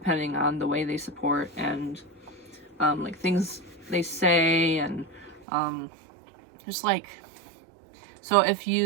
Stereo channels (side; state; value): left; drops out; at 5.5 s